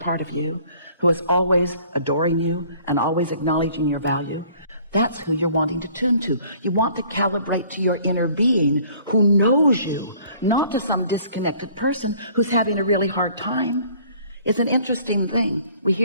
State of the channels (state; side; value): inverted; both; correlation -0.55